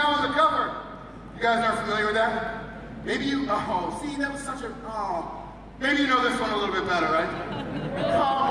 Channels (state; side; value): identical; both; correlation 1.00